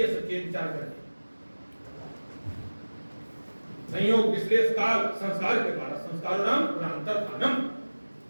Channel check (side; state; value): both; inverted; correlation -1.00